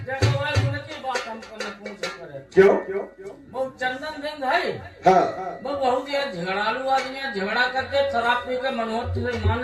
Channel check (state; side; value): identical; both; correlation 1.00